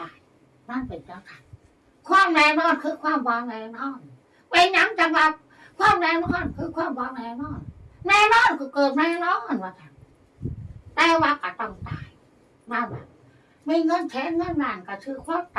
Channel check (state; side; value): identical; both; correlation 1.00